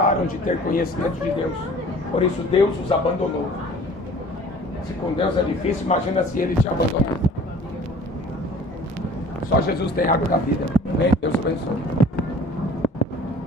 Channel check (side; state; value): both; normal; correlation 0.48